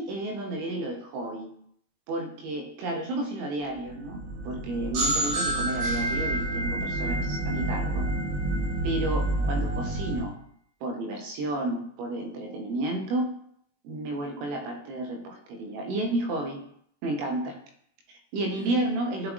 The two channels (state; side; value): late; left; 21 ms